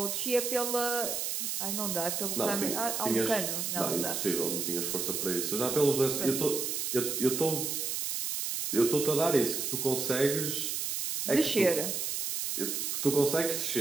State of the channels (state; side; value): noise; right; hiss, 2 dB below the sound